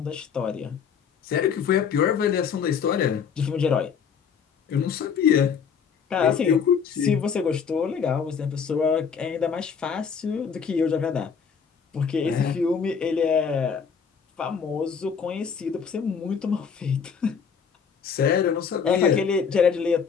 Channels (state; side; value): quieter; right; 6.6 dB